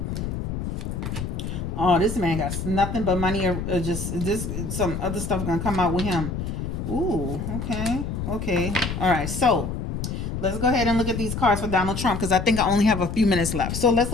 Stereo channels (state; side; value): noise; left; rumble, 4 dB below the sound